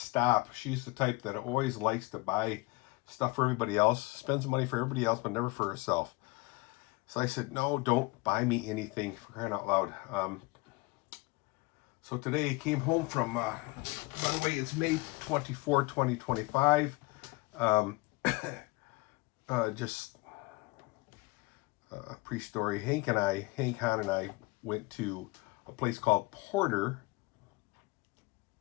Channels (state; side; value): quieter; right; 23.8 dB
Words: She's the type that always likes to buy stuff for everybody else, spends money for everybody else, but never for herself. So I said, no, don't buy me anything, for crying out loud. So today I came home from, by the way, it's May 24, 2025. Just a pre-story. Hank Hahn and I went to a place called Porter